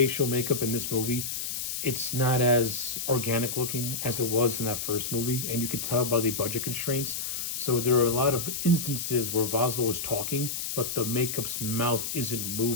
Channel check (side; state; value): left; noise; hiss, 4 dB below the sound